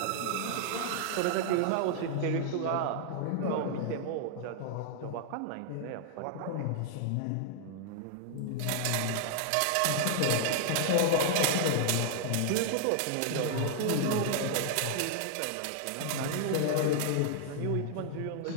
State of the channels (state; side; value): different; both; correlation -0.01